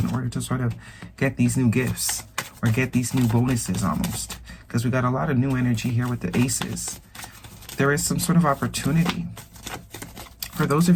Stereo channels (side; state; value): both; identical; correlation 1.00